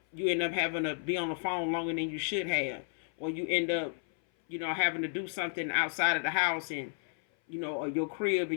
up having to be on the phone longer than you should have. Or you end up, having to do something outside of the house, and or your crib,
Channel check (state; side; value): silent; right; 56 dB below the other